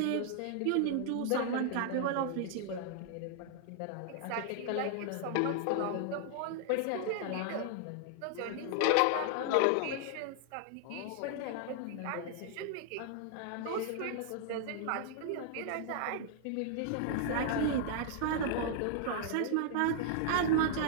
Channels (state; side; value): different; both; correlation -0.01